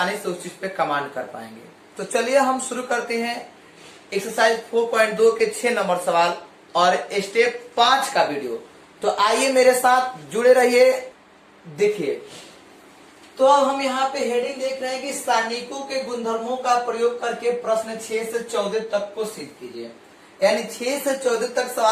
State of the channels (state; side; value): identical; both; correlation 1.00